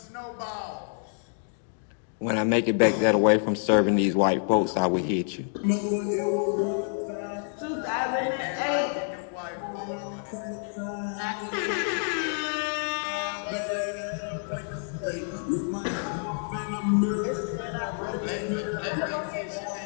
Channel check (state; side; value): silent; right; 59 dB below the other